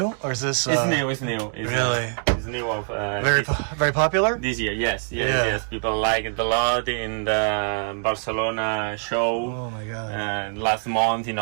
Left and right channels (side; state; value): left; silent; 57 dB below the other